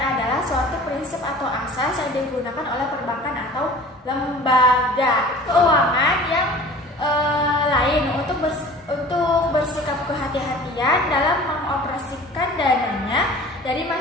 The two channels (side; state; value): both; normal; correlation 0.44